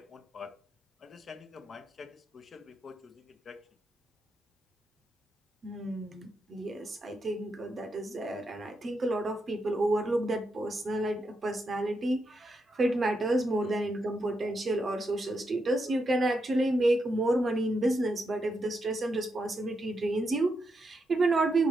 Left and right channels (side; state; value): both; normal; correlation 0.83